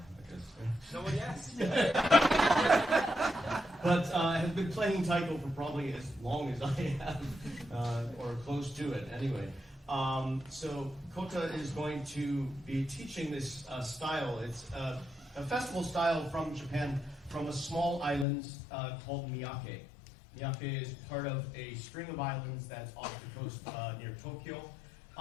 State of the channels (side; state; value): right; drops out; at 18.2 s